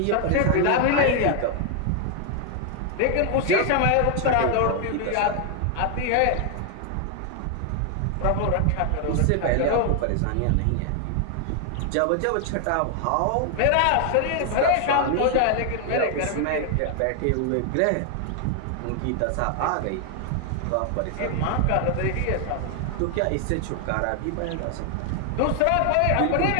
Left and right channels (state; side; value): different; both; correlation 0.00